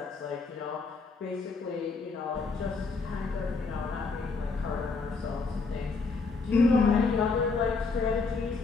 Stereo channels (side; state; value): right; quieter; 4.3 dB